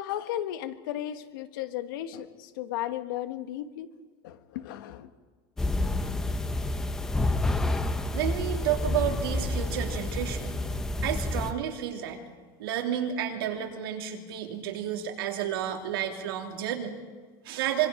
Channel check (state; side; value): normal; both; correlation 0.41